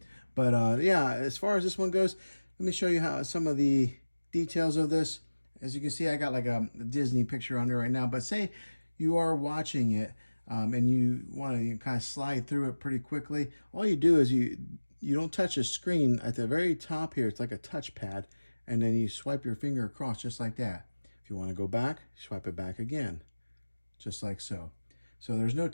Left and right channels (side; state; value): both; inverted; correlation -1.00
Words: But yeah, as far as this one goes, let me show you how some of the details of this. As you can see, I got like a Disney picture on there right now. But say you are watching it and you want to kind of slide through it pretty quickly. All you do is you don't touch the screen. At the very top here, it's like a touchpad. And then you swipe your finger across just like that. If you want to go back, swipe it back again. Just like so. So there's no